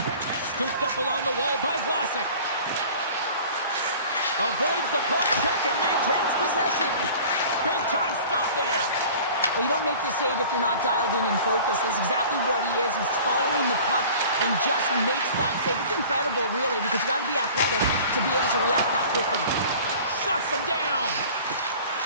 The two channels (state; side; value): inverted; both; correlation -0.44